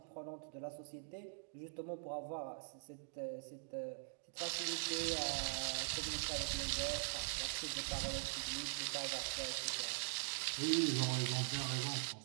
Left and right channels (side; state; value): left; silent; digital silence